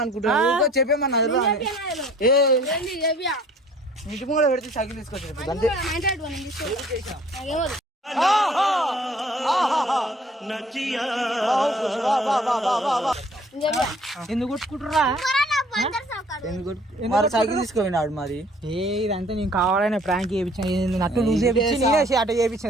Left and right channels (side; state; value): both; normal; correlation 0.54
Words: అనుకుంటా చెప్పామన్నా. ఇంటి ముందు పెడితే సైకిల్ తీసుకొచ్చి ఎందుకు కొట్టుకుంటురా? సైకిల్ తీసుకుపోయినాడు మరి. ఇదంతా నేను కావాలనే ప్రాంక్ చేయించాను. నట్టు లూజ్ చేయించి నేనే అట్ట చేయించిన